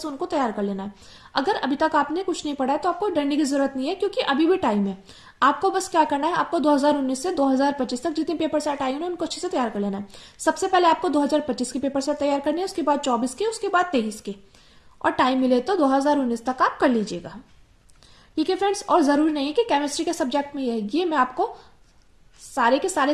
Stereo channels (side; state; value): both; identical; correlation 1.00